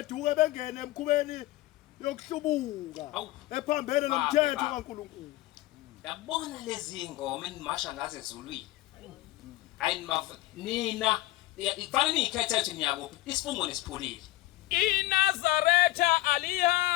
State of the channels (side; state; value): right; quieter; 17.5 dB